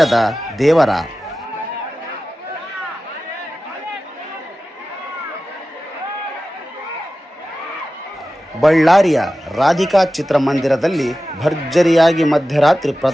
ದೇವರ. ಬಳ್ಳಾರಿಯ ರಾಧಿಕಾ ಚಿತ್ರಮಂದಿರದಲ್ಲಿ ಭರ್ಜರಿಯಾಗಿ ಮಧ್ಯರಾತ್ರಿ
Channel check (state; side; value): normal; both; correlation 0.95